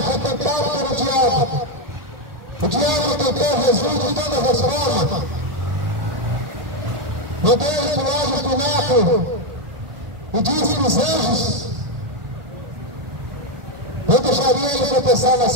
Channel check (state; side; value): late; left; 1.8 ms